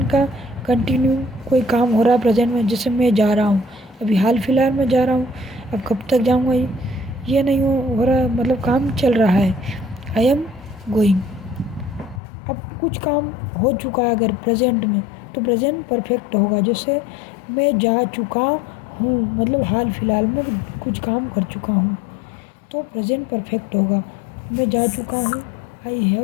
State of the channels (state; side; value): drops out; right; at 12.2 s